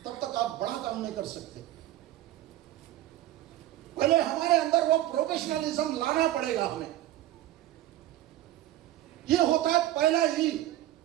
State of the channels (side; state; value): left; quieter; 14.2 dB